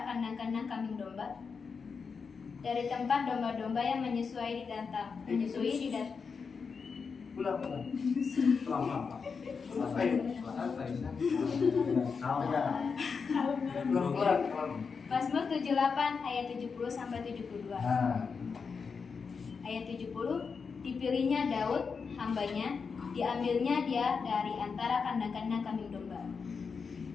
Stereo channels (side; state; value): right; quieter; 5.4 dB